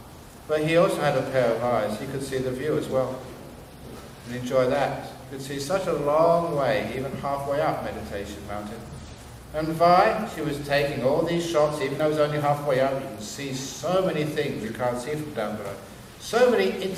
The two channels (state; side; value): identical; both; correlation 1.00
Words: But he also had a pair of eyes. He could see the view as well. And enjoy that. You could see such a long way, even halfway up Meditation Mountain. And Vi, she was taking all these shots, even though it was only halfway up. You can see so many things you can't see from down below. So many